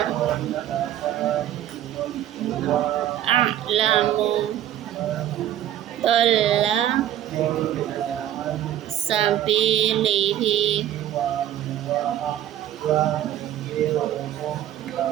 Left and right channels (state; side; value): quieter; left; 12.0 dB